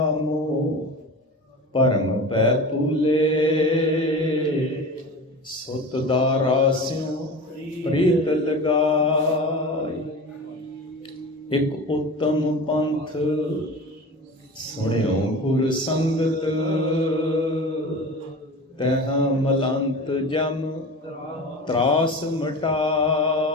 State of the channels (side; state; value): both; normal; correlation 0.33